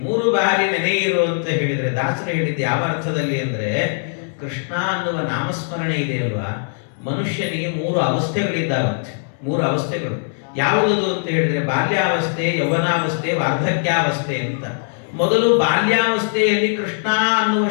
3 ಬಾರಿ ನೆನೆಯಿರು ಅಂತ ಹೇಳಿದ್ರೆ ದಾಸರು ಹೇಳಿದ್ದು ಯಾವ ಅರ್ಥದಲ್ಲಿ ಅಂದ್ರೆ, ಕೃಷ್ಣ ಅನ್ನುವ ನಾಮಸ್ಮರಣೆ ಇದೆ ಅಲ್ವಾ, ಮನುಷ್ಯನಿಗೆ 3 ಅವಸ್ಥೆಗಳಿದ್ದಾವಂತೆ. 3 ಅವಸ್ಥೆಗಳು ಯಾವುದದು ಅಂತ ಹೇಳಿದ್ರೆ, ಬಾಲ್ಯಾವಸ್ಥೆ, ಯೌವನಾವಸ್ಥೆ, ವಾರ್ಧಕ್ಯಾವಸ್ಥೆ ಅಂತ. ಮೊದಲು ಬಾಲ್ಯಾವಸ್ಥೆಯಲ್ಲಿ ಕೃಷ್ಣ ಅನ್ನುವ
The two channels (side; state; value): right; silent; 66 dB below the other